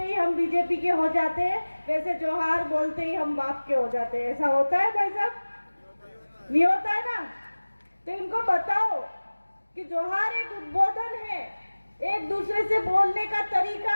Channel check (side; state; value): both; inverted; correlation -1.00